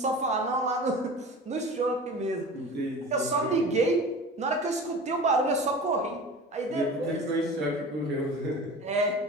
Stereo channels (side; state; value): both; normal; correlation 0.36